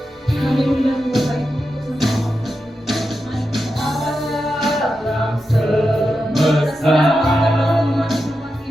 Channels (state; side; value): normal; both; correlation 0.89